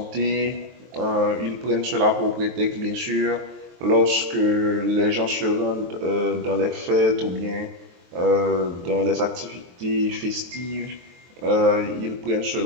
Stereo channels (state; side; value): late; left; 23 ms